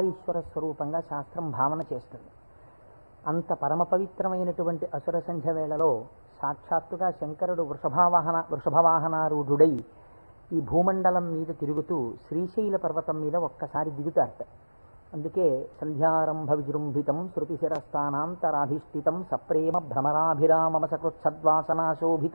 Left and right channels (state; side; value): inverted; both; correlation -1.00